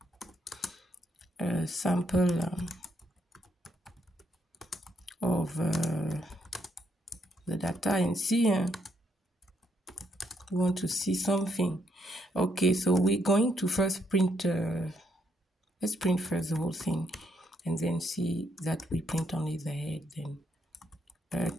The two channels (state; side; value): normal; both; correlation 0.74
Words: a sample of the data and see we want to see something. Okay, so we're going to first print let's print first the whole thing and then see that we print only the head. Then